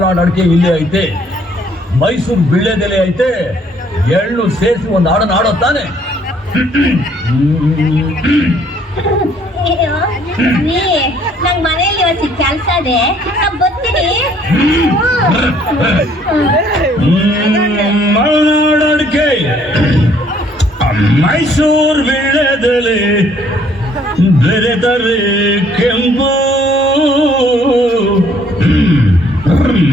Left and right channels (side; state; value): both; normal; correlation 0.63